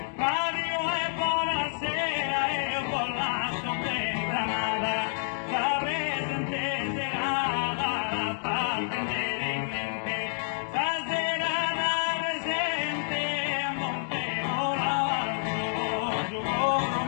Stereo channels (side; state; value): right; silent; digital silence